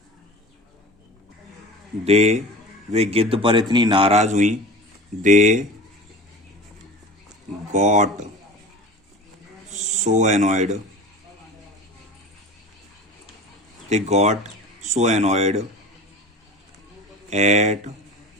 दे वे गिद्ध पर इतनी नाराज हुई। They got so annoyed, they got so annoyed at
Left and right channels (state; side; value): normal; both; correlation 0.36